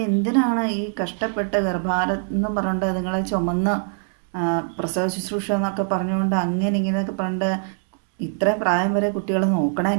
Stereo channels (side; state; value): left; silent; 61 dB below the other